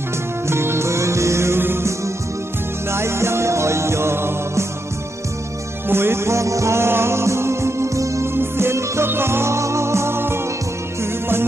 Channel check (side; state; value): both; normal; correlation 0.83